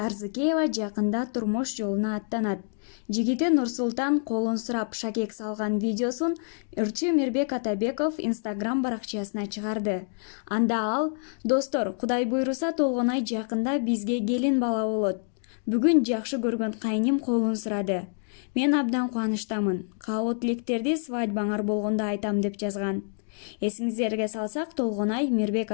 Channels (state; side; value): silent; right; 60 dB below the other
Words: жакында турмуш жолуна аттанат. Жигити Нурсултан колун сурап шакек салган видеосун ырчы Мирбек Атабеков Instagram баракчасына чыгарды. Анда ал: "Достор, Кудай буйруса Толгонай жакында бизге келин бала болот. Бүгүн жакшы көргөн кайним колун сурады. Мен абдан кубанычтамын. Каалоо тилектерди свадьбаңар болгондо айтам" деп жазган. Эсиңиздерге салсак, Толгонай Мирбек